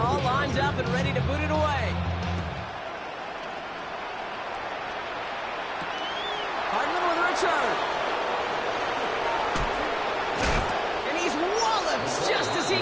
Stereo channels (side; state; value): both; identical; correlation 1.00